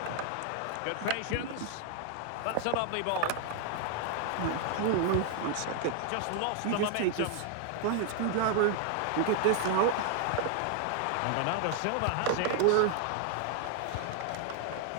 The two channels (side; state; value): both; different; correlation 0.00